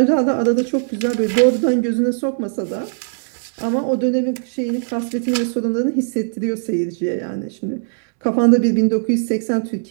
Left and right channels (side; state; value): left; silent; digital silence